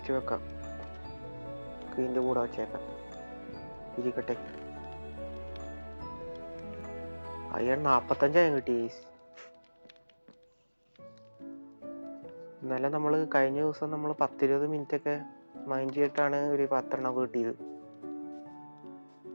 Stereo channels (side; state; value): both; inverted; correlation -1.00